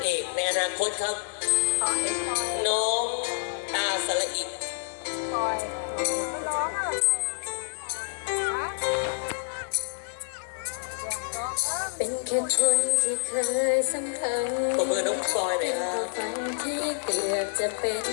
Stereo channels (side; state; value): right; silent; digital silence